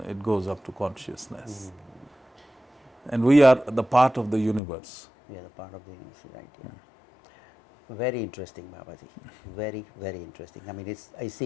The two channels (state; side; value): drops out; right; at 4.6 s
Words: it goes up to consciousness. And we are the part of the universe. We are the part of the universe, right? Yeah. Very interesting, Babaji. Very, very interesting. I mean, I